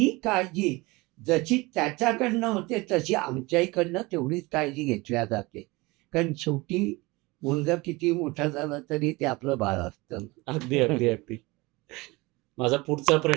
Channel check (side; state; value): left; quieter; 23.1 dB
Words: काळजी जशी त्याच्याकडनं होते, तशी आमच्याकडनं तेवढीच काळजी घेतल्या जाते. कारण शेवटी मुलगा किती मोठा झाला तरी ते आपलं बाळ असतं. अगदी, अगदी, अगदी. माझा पुढचा